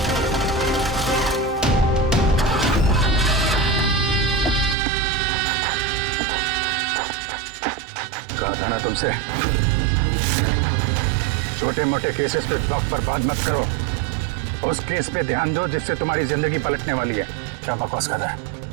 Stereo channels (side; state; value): left; drops out; at 4.8 s